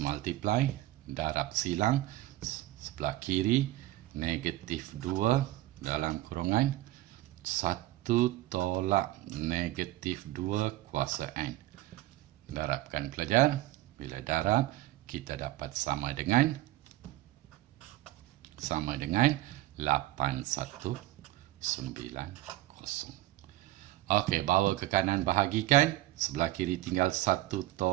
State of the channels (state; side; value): quieter; left; 16.2 dB